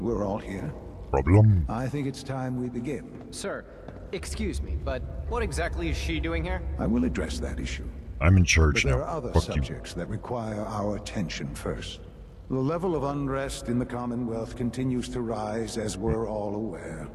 we're all here. Problem? I think it's time we begin. Sir, excuse me, but what exactly is she doing here? I will address that issue. I'm in charge But now. there are other Fuck subjects that require our attention first. The level of unrest in the Commonwealth continues to rise, as we're all aware.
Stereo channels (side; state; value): both; identical; correlation 1.00